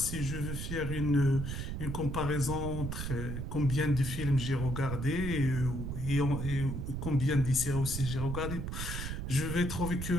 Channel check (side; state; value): right; noise; rumble, 4 dB below the sound